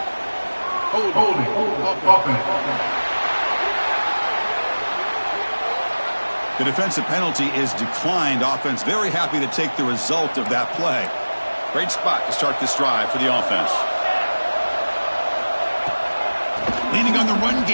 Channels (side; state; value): both; inverted; correlation -1.00